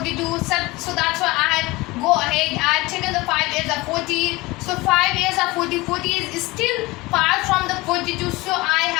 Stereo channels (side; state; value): right; quieter; 21.7 dB